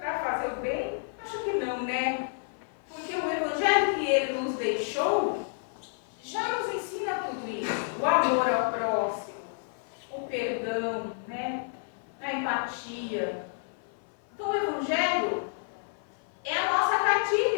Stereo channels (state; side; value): silent; right; 57 dB below the other